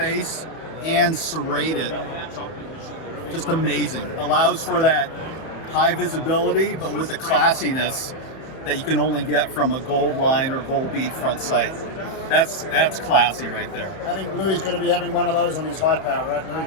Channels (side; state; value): right; late; 31 ms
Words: and serrate it. Just amazing. Allows for that high visibility, but with the classiness that you can only get from a gold line or gold bead front sight. That's classy right there. I think Louis is going to be having one of those on his Hi-Power, right